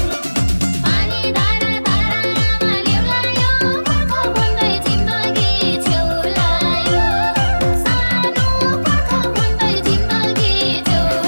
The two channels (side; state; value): both; inverted; correlation -1.00